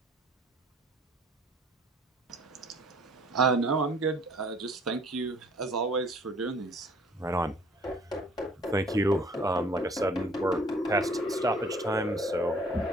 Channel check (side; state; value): both; normal; correlation 0.55